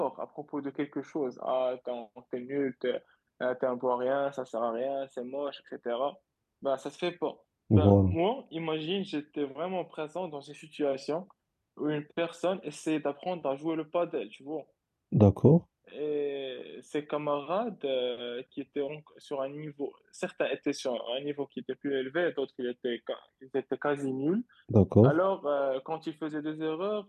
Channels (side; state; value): both; identical; correlation 1.00